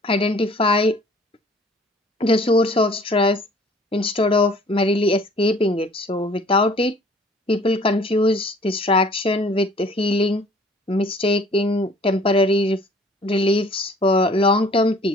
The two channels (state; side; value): normal; both; correlation 0.53